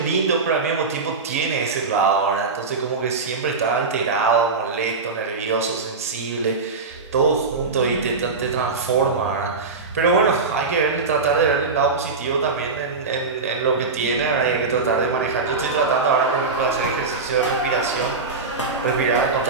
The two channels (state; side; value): quieter; left; 4.3 dB